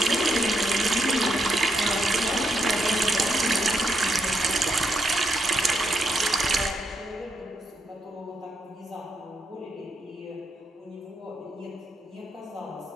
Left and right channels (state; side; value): normal; both; correlation 0.80